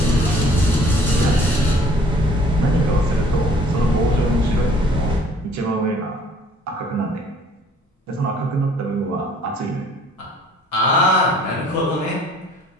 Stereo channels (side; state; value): both; normal; correlation 0.56